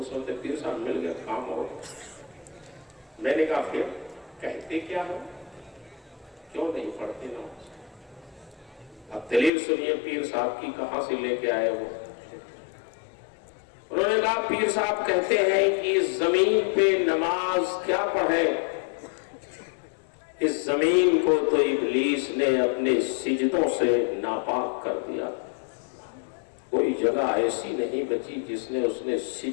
سوچتے پیر صاحب مل گئے کام ہو گیا. میں نے کہا پھر کہتے کیا ہو، کیوں نہیں پڑھتے نماز؟ اب دلیل سنیے پیر صاحب کی کہاں سے لے کے آئے وہ. انہوں نے کہا پیر صاحب کہتے ہیں کہ اس زمین پہ نماز کیا پڑھے، اس زمین کو تو ابلیس نے اپنے سجدوں سے ناپاک کر دیا. کوئی جگہ ایسی نہیں بچی جس نے اس نے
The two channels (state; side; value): drops out; right; at 9.5 s